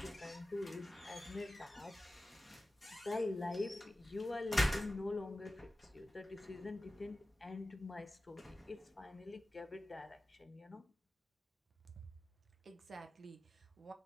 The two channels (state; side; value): normal; both; correlation 0.95